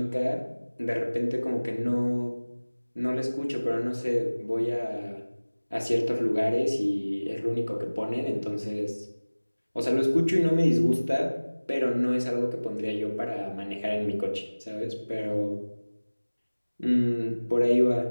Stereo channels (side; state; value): both; inverted; correlation -1.00